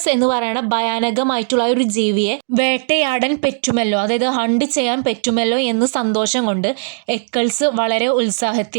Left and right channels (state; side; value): silent; left; digital silence